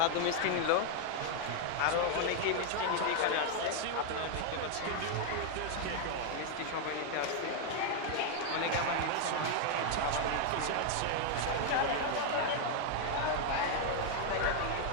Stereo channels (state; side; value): different; both; correlation 0.00